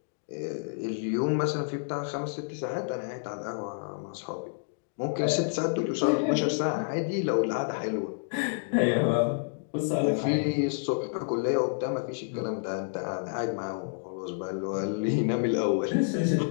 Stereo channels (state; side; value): silent; right; digital silence